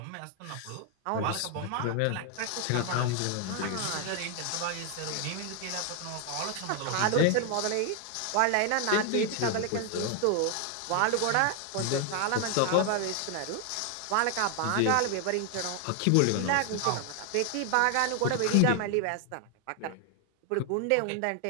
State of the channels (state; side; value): different; both; correlation 0.00